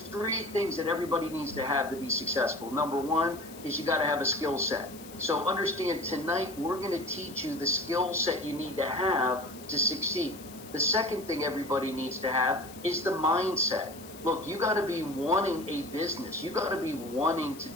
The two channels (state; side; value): noise; left; hiss, 18 dB below the sound